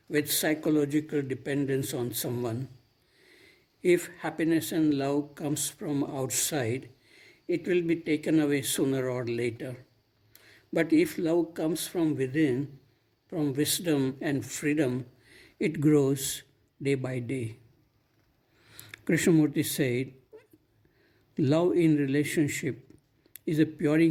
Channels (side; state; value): both; identical; correlation 1.00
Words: with psychological dependence on someone. If happiness and love comes from outside, it will be taken away sooner or later. But if love comes from within, from wisdom and freedom, it grows day by day. Krishnamurti said, love in relationship is a